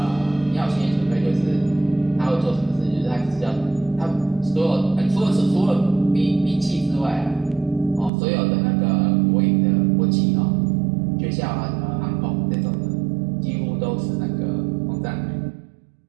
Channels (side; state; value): left; drops out; at 8.1 s